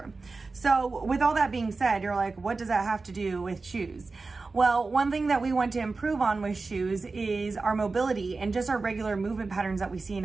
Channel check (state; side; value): quieter; left; 3.9 dB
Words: So with all that being said, you're like, what does that have to do with shoes? Well, one thing that we want to improve on with shoes is our mobility and just our regular movement patterns that we see in